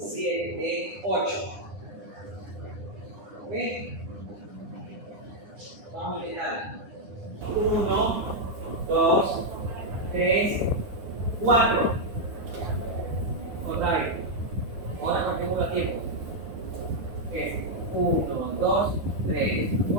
8. ¿Ok? Vamos a intentar. 1, 2, 3, 4. Otra vez. Ahora contemos los tiempos. Es 1, 2, 3,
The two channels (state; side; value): late; left; 9.8 ms